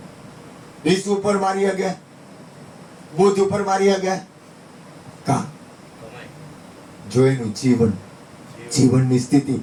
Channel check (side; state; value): both; identical; correlation 1.00